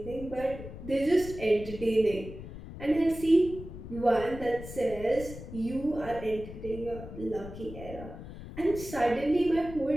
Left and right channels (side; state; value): left; noise; rumble, 12 dB below the sound